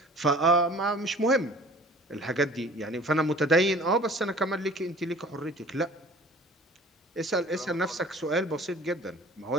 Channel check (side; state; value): both; normal; correlation 0.47